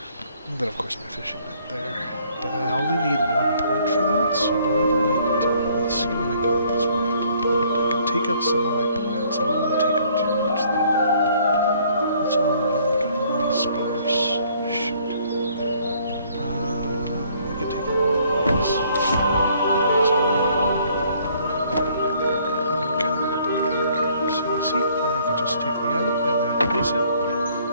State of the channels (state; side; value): inverted; both; correlation -0.62